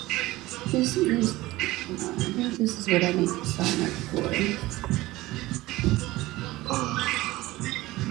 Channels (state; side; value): quieter; left; 18.6 dB